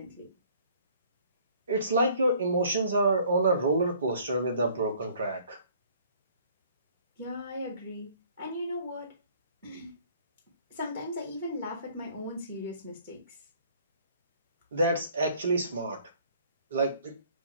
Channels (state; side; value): inverted; both; correlation -0.57